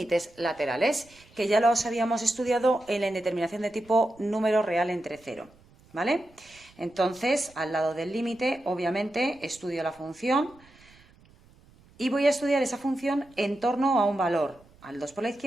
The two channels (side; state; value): right; noise; rumble, 28 dB below the sound